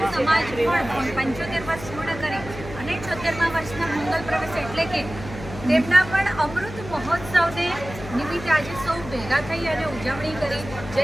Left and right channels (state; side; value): noise; left; hum, 12 dB below the sound